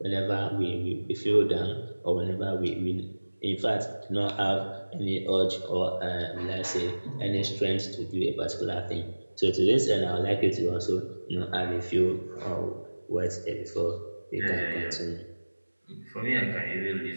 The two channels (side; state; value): both; inverted; correlation -1.00